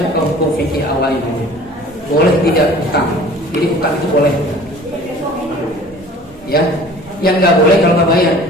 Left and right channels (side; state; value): both; normal; correlation 0.47